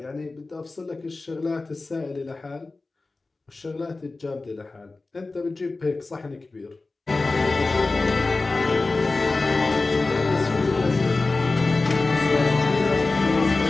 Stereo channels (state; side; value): quieter; right; 3.5 dB